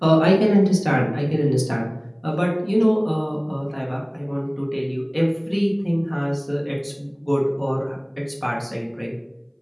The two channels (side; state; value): both; identical; correlation 1.00